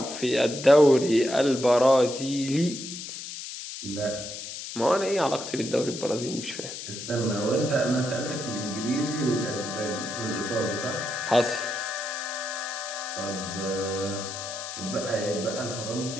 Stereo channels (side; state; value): left; noise; hiss, 9 dB below the sound